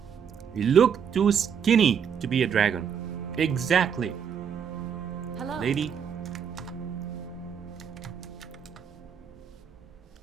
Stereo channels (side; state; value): left; quieter; 7.5 dB